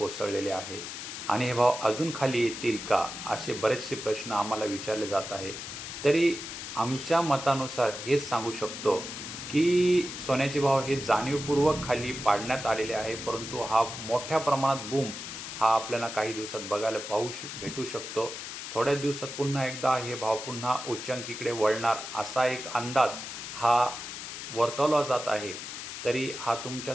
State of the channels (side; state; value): left; noise; hiss, 8 dB below the sound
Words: आहे आणि हे भाव अजून खाली येतील का असे बरेचसे प्रश्न आम्हाला विचारले जात आहे. तरी आमच्या मतानुसार हेच सांगू शकतो की सोन्याचे भाव हे जाणीवपूर्वक खाली पाडण्यात आलेले आहे, परंतु हा मोठ्या प्रमाणात बूम हा आपल्याला काही दिवसात बघायला भेटू शकतो. थोड्याच दिवसात पुन्हा एकदा हे भाव पुन्हा उच्चांकीकडे वळणार असा एक अंदाज हा वर्तवला जात आहे. तरी हा